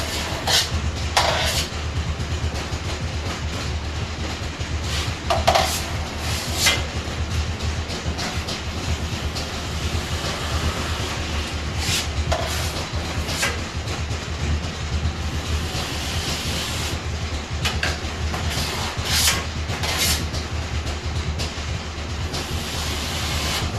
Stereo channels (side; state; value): both; identical; correlation 1.00